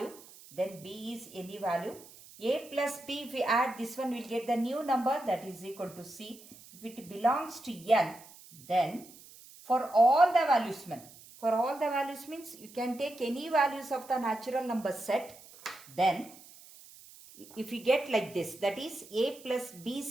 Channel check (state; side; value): noise; right; hiss, 20 dB below the sound